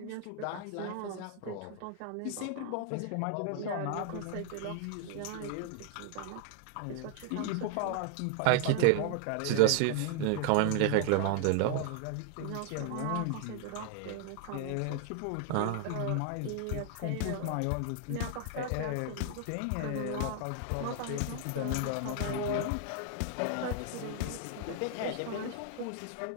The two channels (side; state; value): both; different; correlation 0.00